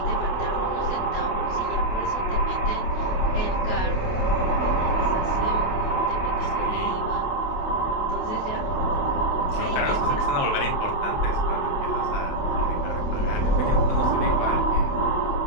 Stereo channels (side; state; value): right; late; 28 ms